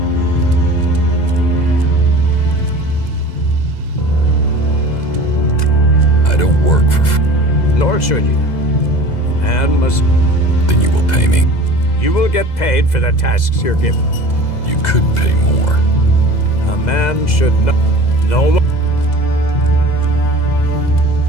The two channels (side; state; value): right; late; 2.0 ms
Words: I don't work for... Nor should you. Man must... Then you will pay me. You will get paid for the tasks you're given. You could pay more. A man should know... No...